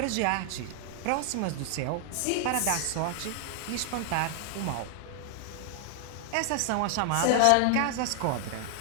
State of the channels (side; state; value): both; different; correlation 0.00